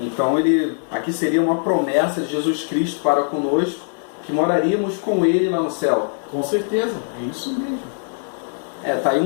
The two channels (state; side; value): silent; right; digital silence